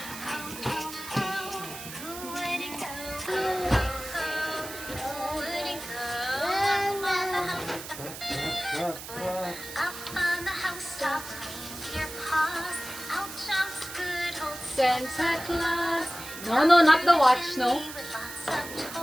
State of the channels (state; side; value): noise; right; hiss, 11 dB below the sound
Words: Santa Claus. No, not the watch. No.